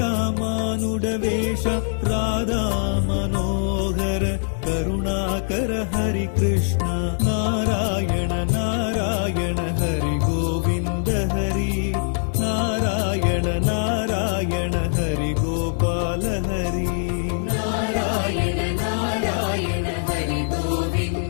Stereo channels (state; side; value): silent; right; digital silence